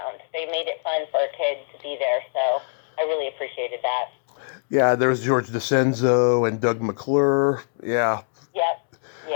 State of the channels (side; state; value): right; silent; digital silence